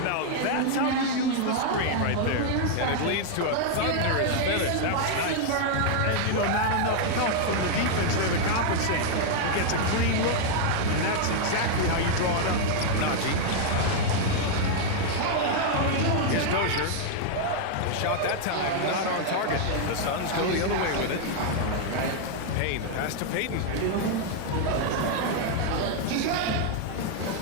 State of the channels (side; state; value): both; different; correlation 0.00